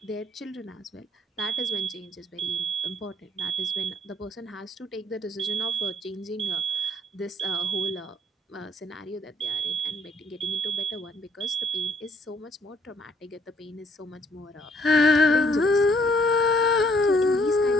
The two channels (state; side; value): normal; both; correlation 0.65